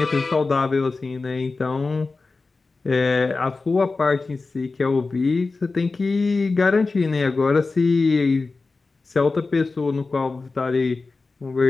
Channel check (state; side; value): quieter; right; 3.8 dB